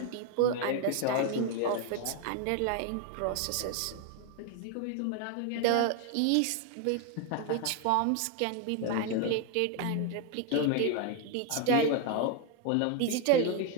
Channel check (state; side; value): different; both; correlation 0.01